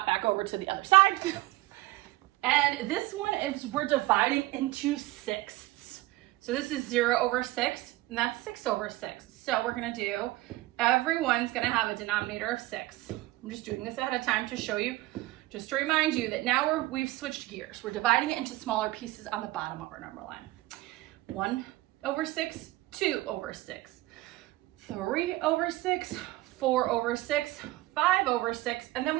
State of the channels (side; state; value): left; quieter; 18.7 dB